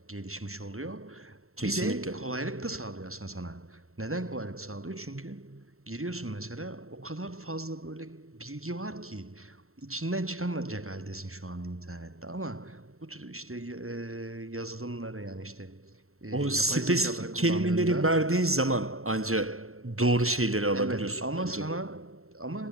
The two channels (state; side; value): late; left; 0.63 ms